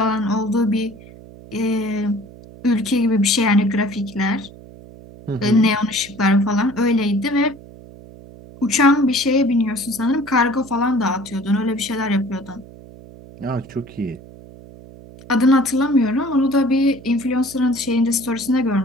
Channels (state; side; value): noise; right; hum, 19 dB below the sound